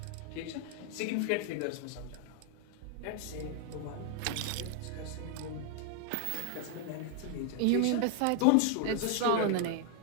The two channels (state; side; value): different; both; correlation 0.00